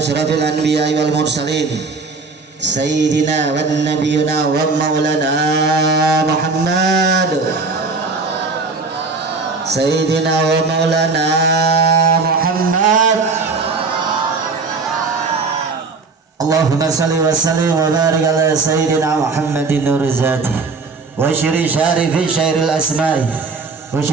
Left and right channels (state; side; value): quieter; left; 4.2 dB